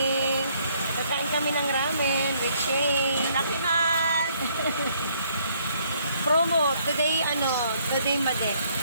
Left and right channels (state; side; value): inverted; both; correlation -0.67